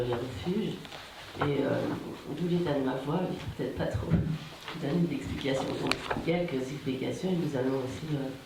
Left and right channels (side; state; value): both; identical; correlation 1.00